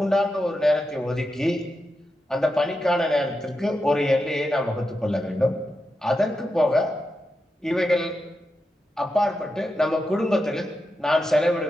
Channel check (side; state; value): both; normal; correlation 0.88